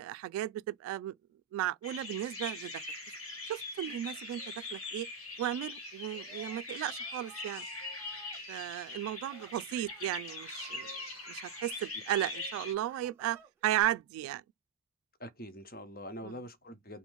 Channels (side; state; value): left; quieter; 7.8 dB